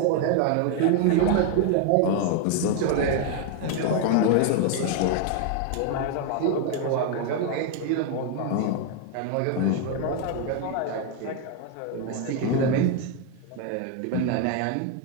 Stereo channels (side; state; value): both; different; correlation 0.01